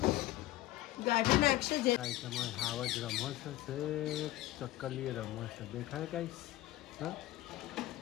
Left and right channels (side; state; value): right; quieter; 16.3 dB